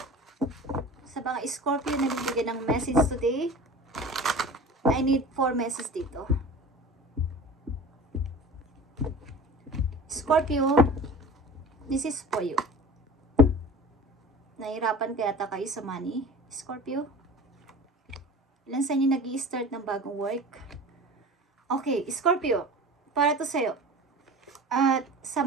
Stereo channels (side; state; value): both; normal; correlation 0.38